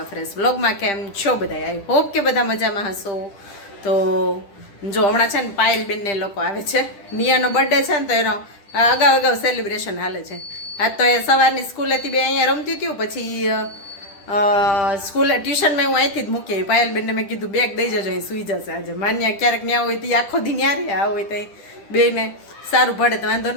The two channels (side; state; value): right; late; 10 ms